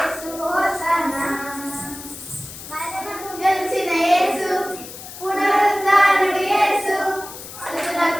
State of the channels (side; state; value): left; noise; hiss, 13 dB below the sound